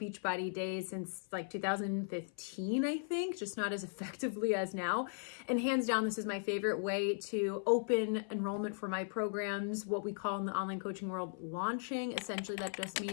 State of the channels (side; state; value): right; silent; 53 dB below the other